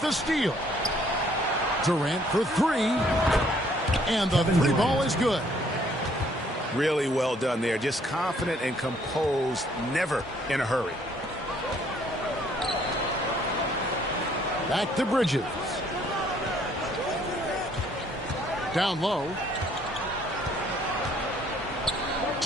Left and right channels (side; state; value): both; normal; correlation 0.63